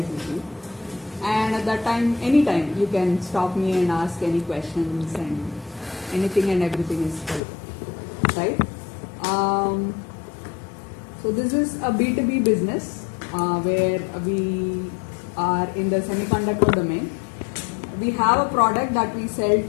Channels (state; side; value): drops out; right; at 7.4 s